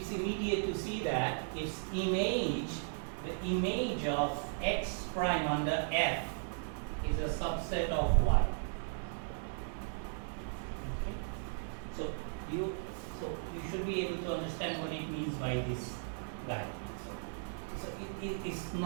immediate to see that the image of X prime under F is a subset of Y. Okay? So you should be able to understand what it means by this guy. So it is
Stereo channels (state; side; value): silent; left; digital silence